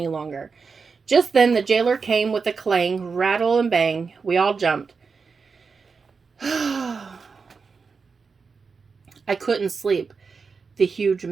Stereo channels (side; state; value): left; quieter; 5.1 dB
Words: longer. Just then the jailer came with a clang, rattle, and bang. We all jumped. I couldn't sleep, the huge